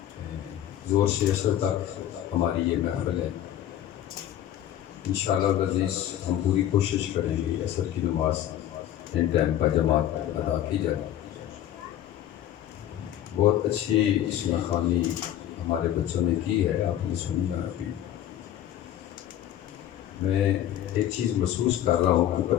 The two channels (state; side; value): quieter; right; 11.6 dB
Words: زور سے عصر تک ہماری یہ محفل ہے۔ انشاءاللہ العزیز ہم پوری کوشش کریں گے عصر کی نماز ان ٹائم پر جماعت ادا کی جائے۔ بہت اچھی اسم خوانی ہمارے بچوں نے کی ہے، آپ نے سنی ہے ابھی۔ میں ایک چیز محسوس کر رہا ہوں کہ